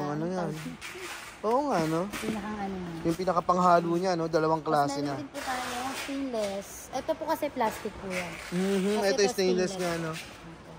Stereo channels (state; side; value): identical; both; correlation 1.00